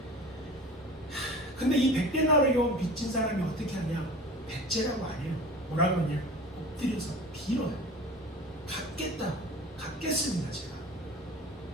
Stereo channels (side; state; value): both; normal; correlation 0.39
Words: 근데 이 100데나리온 빚진 사람이 어떻게 하냐? 백제라고 안 해요. 뭐라고 하냐? 엎드려서 빌어요. 갚겠습니다 제가.